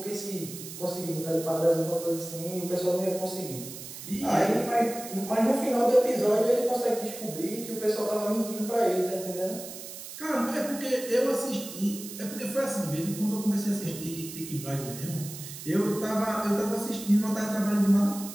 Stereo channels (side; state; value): right; noise; hiss, 11 dB below the sound